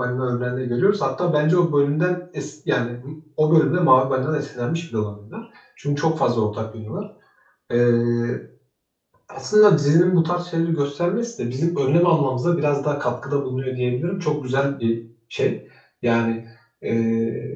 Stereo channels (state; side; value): identical; both; correlation 1.00